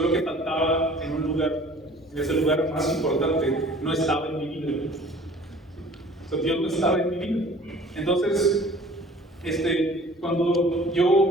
que faltaba en un lugar, en ese lugar más importante, no estaba en mi vida. ¿Sí? O sea, Dios no estaba en mi vida. Entonces, cuando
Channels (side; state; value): both; normal; correlation 0.49